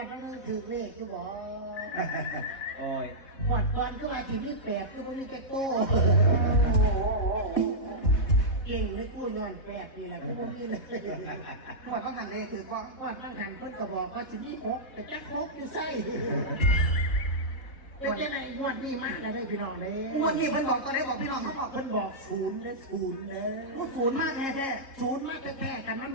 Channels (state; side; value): late; right; 3.7 ms